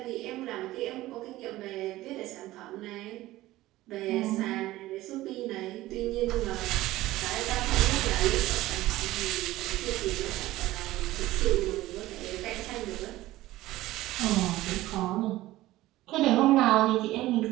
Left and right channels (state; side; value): quieter; left; 16.7 dB